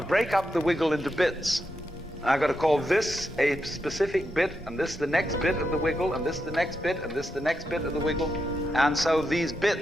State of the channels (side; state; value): both; normal; correlation 0.85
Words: break up the wiggle into bits. I've got to call this a specific bit, and this the next bit of the wiggle, and this the next bit, and this the next bit of the wiggle. And so these